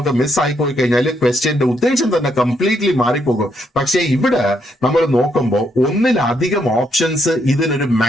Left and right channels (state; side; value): normal; both; correlation 0.76